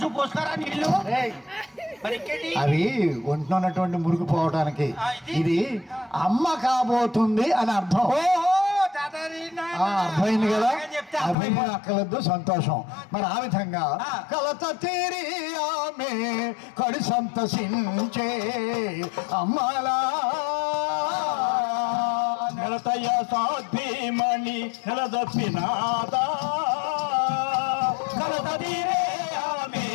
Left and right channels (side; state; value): right; drops out; at 11.4 s